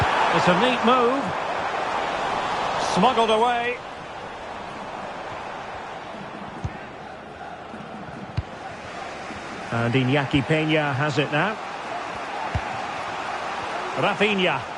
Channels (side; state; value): both; identical; correlation 1.00